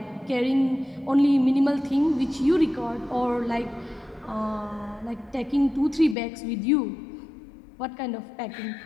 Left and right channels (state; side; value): drops out; right; at 6.2 s